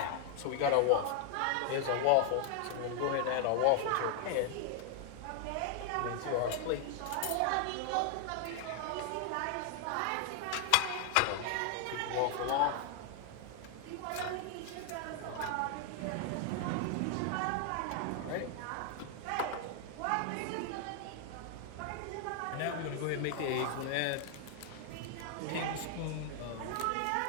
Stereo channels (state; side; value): different; both; correlation 0.00